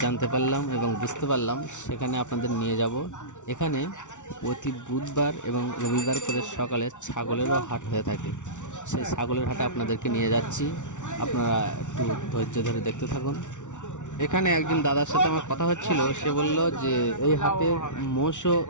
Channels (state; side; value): late; right; 0.86 ms